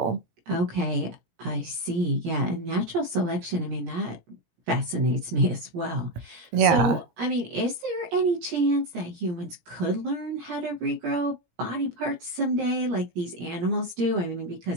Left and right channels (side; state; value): left; late; 17 ms